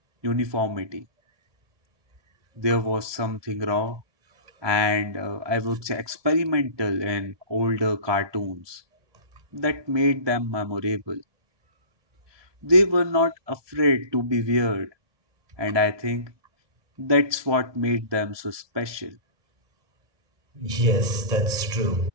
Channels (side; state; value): left; late; 1.2 ms